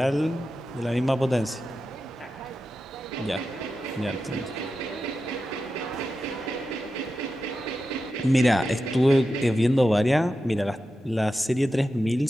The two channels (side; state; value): both; normal; correlation 0.91